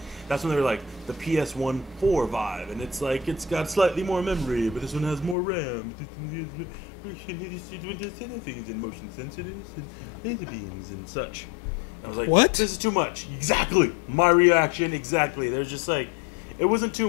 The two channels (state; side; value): drops out; right; at 5.4 s